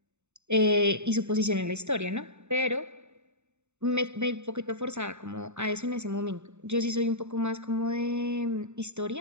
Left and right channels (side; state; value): left; late; 0.82 ms